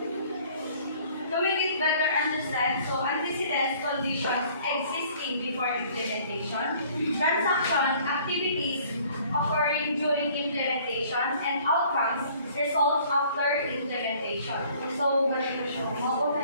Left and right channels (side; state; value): both; inverted; correlation -0.56